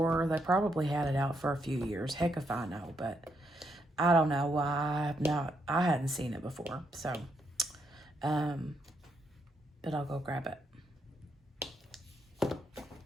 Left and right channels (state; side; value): normal; both; correlation 0.77